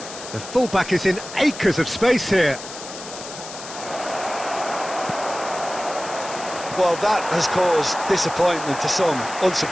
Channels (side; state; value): left; noise; hiss, 12 dB below the sound